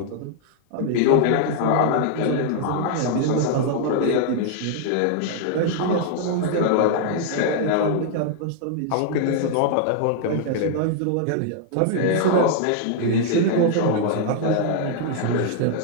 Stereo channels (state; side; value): different; both; correlation -0.01